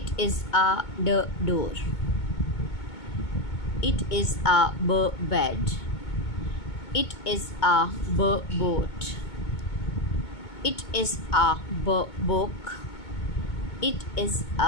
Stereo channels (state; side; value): late; right; 2.2 ms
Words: is a door. It is a bed. It is a boat. It is a book. It is